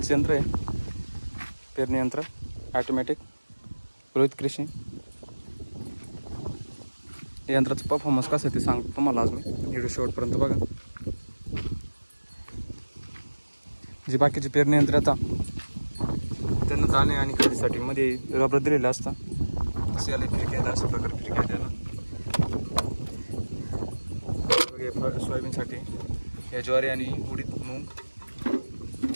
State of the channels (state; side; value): inverted; both; correlation -1.00